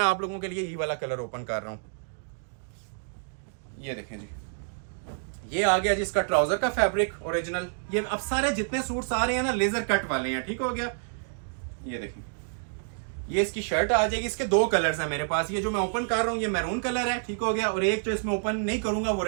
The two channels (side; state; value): left; silent; digital silence